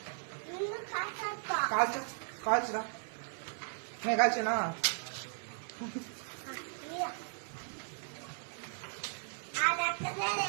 కాల్చురా నేను కాల్చినా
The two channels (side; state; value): left; silent; 53 dB below the other